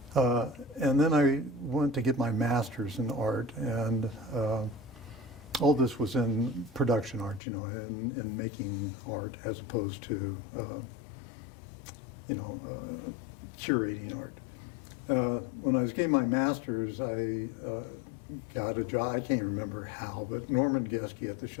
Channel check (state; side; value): drops out; right; at 7.4 s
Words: And then I went to get my master's in art, and all this was in production art, in making art as opposed to, curating art. When I was getting my master's, I got a job. I can't remember how, but Norman Geske at the